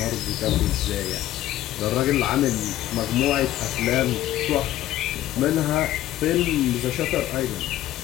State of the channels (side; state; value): right; quieter; 13.8 dB